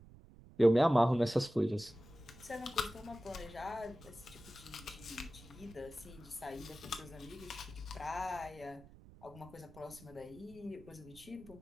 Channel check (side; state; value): right; noise; rumble, 20 dB below the sound